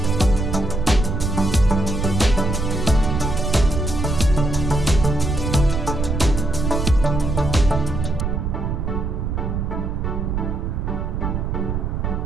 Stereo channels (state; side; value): noise; right; rumble, 1 dB below the sound